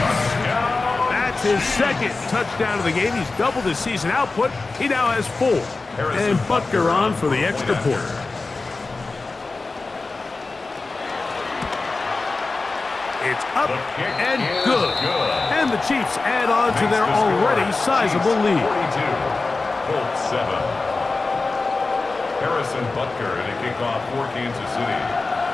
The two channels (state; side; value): quieter; right; 3.7 dB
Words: That's his 2nd touchdown of the game. He's doubled his season output. He now has 4. And Butker on for the extra point. It's up and good. And the Chiefs add on to their already sizable lead. 42, Colts 7. Harrison Butker in a kickoff for Kansas City.